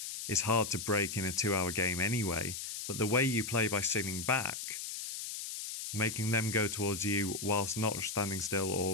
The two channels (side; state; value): left; noise; hiss, 6 dB below the sound